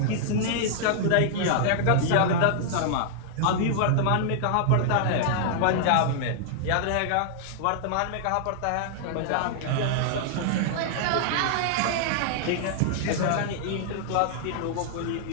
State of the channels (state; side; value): different; both; correlation -0.01